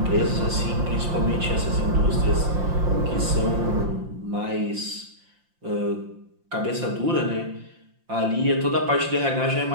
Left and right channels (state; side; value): late; left; 5.8 ms